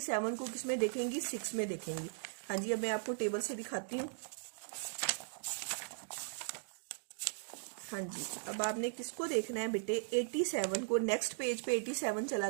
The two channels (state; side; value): silent; left; digital silence